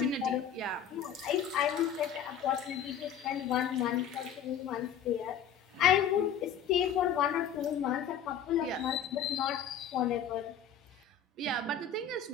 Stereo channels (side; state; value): right; quieter; 7.9 dB